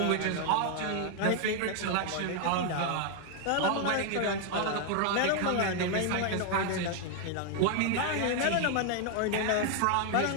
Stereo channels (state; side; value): different; both; correlation 0.00